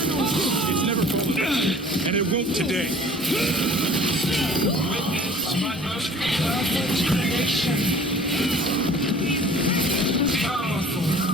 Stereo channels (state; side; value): normal; both; correlation 0.48